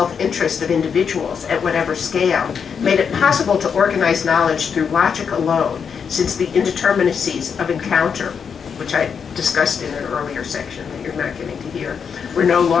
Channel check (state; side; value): quieter; right; 6.7 dB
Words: of individuals at whatever scale made it possible to organize knowledge through logic alone, since the indeterminacies of encounter, which I discussed in an earlier section that you're not getting to hear, were no